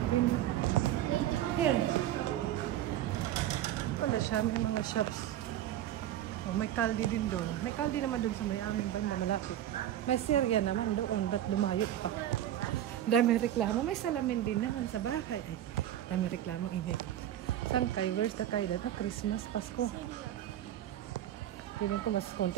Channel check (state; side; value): quieter; left; 12.1 dB